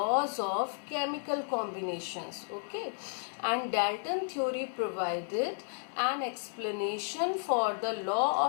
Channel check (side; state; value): right; silent; digital silence